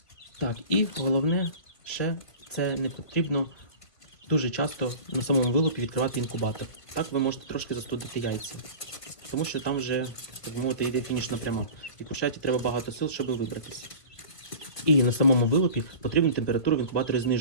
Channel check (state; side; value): late; right; 1.8 ms